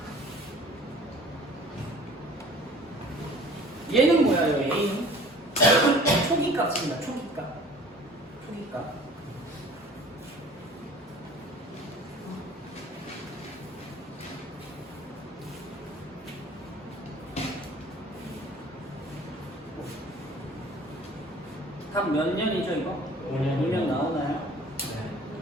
얘는 뭐야, 요 A는? 초기값입니다. 초기값. 답 몇 년이죠, 이거? 5년 나오나요? 네.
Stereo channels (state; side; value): normal; both; correlation 0.48